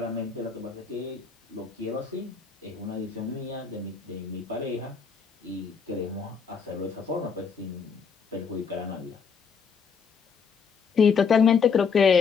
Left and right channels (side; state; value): right; quieter; 6.0 dB